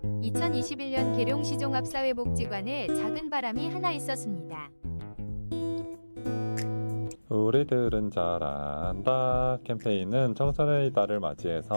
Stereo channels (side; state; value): both; inverted; correlation -1.00